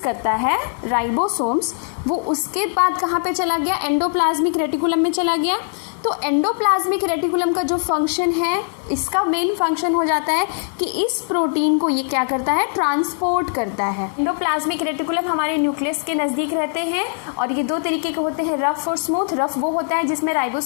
है राइबोसोम्स, वो उसके बाद कहाँ पे चला गया? एंडोप्लाज्मिक रेटिकुलम में चला गया। तो एंडोप्लाज्मिक रेटिकुलम का जो फंक्शन है, इसका मेन फंक्शन हो जाता है कि इस प्रोटीन को ये क्या करता है? ट्रांसपोर्ट करता है। एंडोप्लाज्मिक रेटिकुलम हमारे न्यूक्लियस के नज़दीक रहते हैं और ये दो तरीके के होते हैं, रफ और स्मूथ। रफ वो होता है जिसमें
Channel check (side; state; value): right; silent; 65 dB below the other